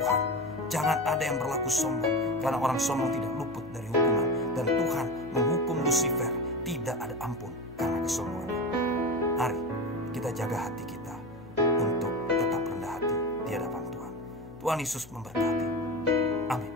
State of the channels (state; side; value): noise; left; hum, 21 dB below the sound